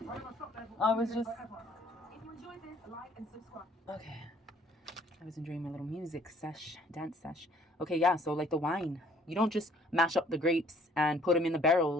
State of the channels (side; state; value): both; normal; correlation 0.59